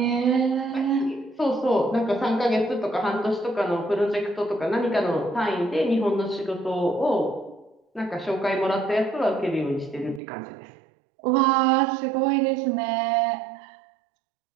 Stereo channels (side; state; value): left; drops out; at 10.2 s